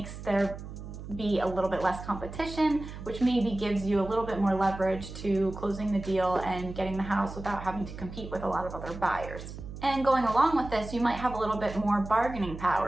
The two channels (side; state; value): right; noise; hum, 11 dB below the sound